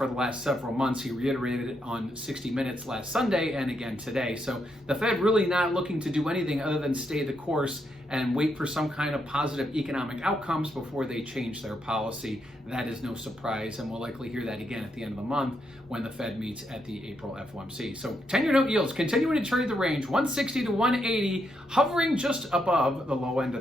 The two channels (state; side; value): normal; both; correlation 0.79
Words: the last several months. He reiterated it on 60 Minutes last Sunday and again today. So the Fed really not looking to do anything other than stay the course and wait for some kind of positive economic outcomes before they change their policy. That is no surprise, and we'll likely hear that again at the end of the month when the Fed meets at the April FOMC. So 10-year note yields continuing to trade the range 160 to 180, hovering just above the low end of